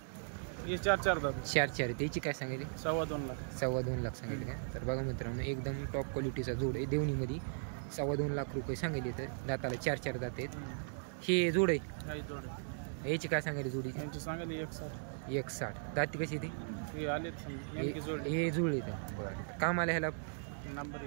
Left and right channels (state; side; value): silent; left; 53 dB below the other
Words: 4 त्याची काय सांगायली? 2.25 लाख सांगायले का? तर बघा मित्रांनो, एकदम टॉप क्वालिटीचा जोड आहे. देवणीमध्ये 2.25 लाख रुपये सांगायले. तर दाताला 4 दात आहेत. हे जोड आहे? याची काय सांगायली जोडीची? 1.60. दाती कशी ती? हे जुळले तर. बरं. काम आलं ह्याला?